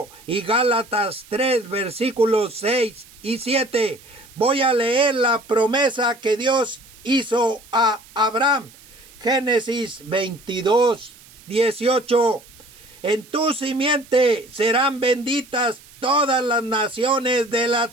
y Gálatas 3, versículos 6 y 7. Voy a leer la promesa que Dios hizo a Abraham. Génesis 22, 18. En tu simiente serán benditas todas las naciones de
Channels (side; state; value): right; noise; hiss, 23 dB below the sound